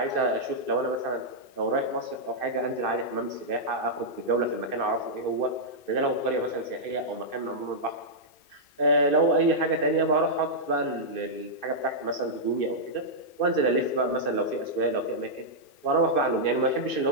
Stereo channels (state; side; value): late; right; 2.6 ms